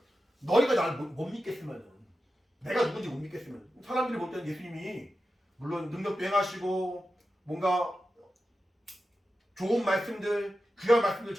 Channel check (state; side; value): normal; both; correlation 0.91